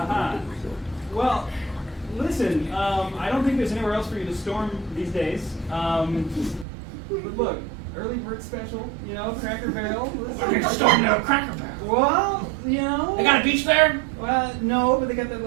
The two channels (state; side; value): drops out; left; at 6.7 s